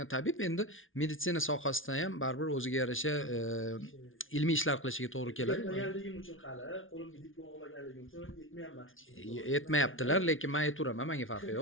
tabib endi meditsina sohasida ham baribir o'ziga yarasha ilmiy ishlar qilishiga to'g'ri keladi. Bilmaganligim uchun hali qo'limdan unga diplom olmaganligim uchun yetmayapman. Yetmayaptilar, lekin men aytaveraman, menga farqi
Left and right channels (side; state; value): right; late; 0.58 ms